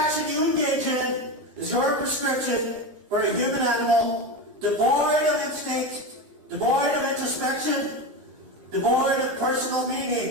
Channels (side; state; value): left; late; 13 ms